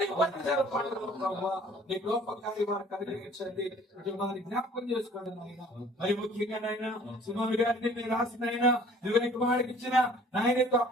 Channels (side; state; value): both; normal; correlation 0.52